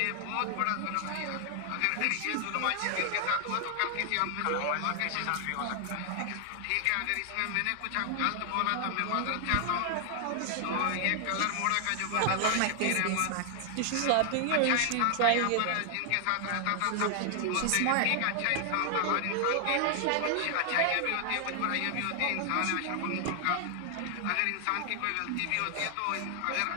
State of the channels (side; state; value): both; different; correlation 0.00